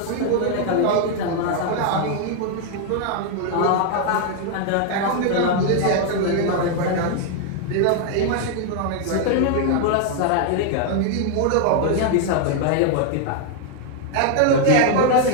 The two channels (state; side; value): different; both; correlation 0.00